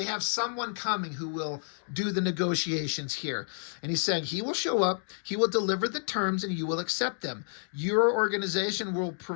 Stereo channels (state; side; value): silent; right; digital silence